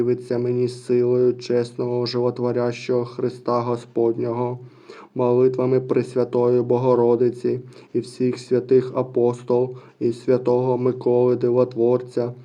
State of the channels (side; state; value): both; identical; correlation 1.00